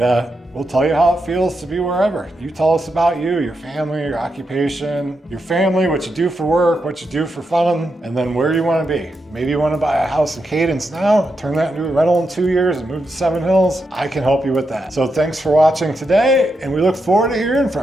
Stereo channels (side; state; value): both; normal; correlation 0.85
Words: we'll tell you how it feels to be wherever. You tell us about you, your family, your occupation, your family, what you do for work, what you do for fun, and then where you want to be. Maybe you want to buy a house in Cadence now, turn that into a rental in 2 years and move to Seven Hills. I can help you with that. So thanks for watching today, and we look forward to hearing